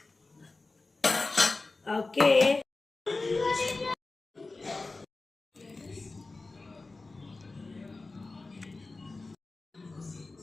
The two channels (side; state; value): right; quieter; 3.5 dB